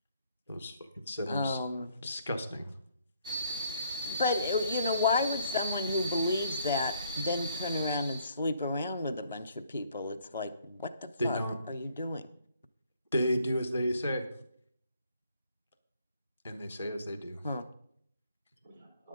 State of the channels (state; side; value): inverted; both; correlation -0.65